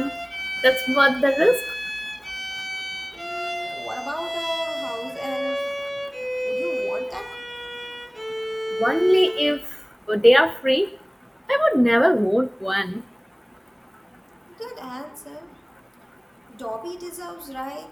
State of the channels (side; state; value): both; identical; correlation 1.00